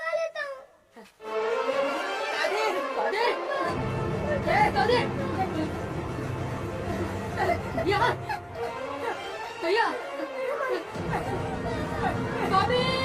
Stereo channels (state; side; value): identical; both; correlation 1.00